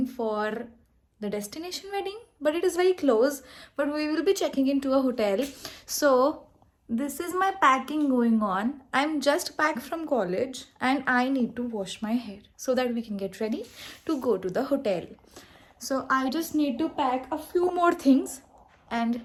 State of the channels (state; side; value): identical; both; correlation 1.00